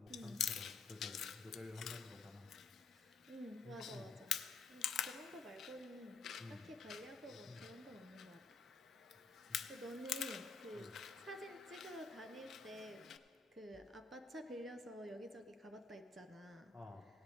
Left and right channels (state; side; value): quieter; right; 5.0 dB